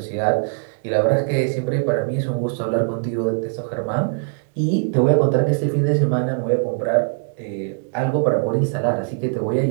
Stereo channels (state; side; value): silent; left; digital silence